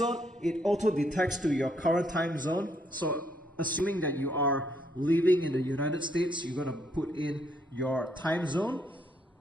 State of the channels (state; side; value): normal; both; correlation 0.72